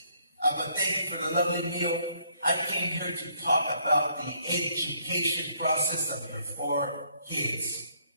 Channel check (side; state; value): both; inverted; correlation -0.68